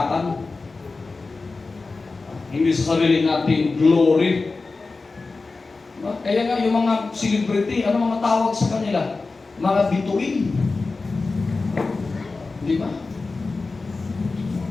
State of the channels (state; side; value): quieter; right; 3.8 dB